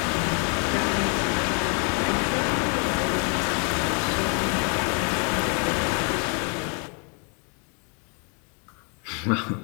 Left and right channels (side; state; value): right; quieter; 37.2 dB